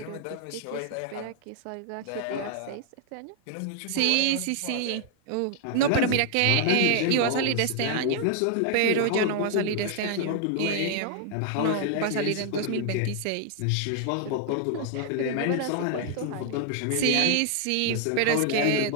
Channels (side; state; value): both; different; correlation 0.00